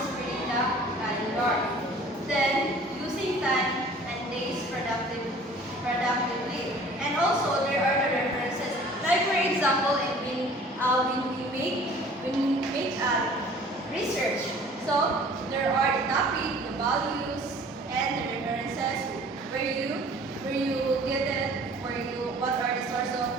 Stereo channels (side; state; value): both; normal; correlation 0.49